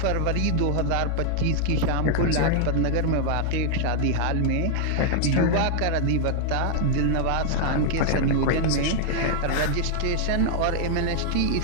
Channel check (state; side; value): different; both; correlation 0.00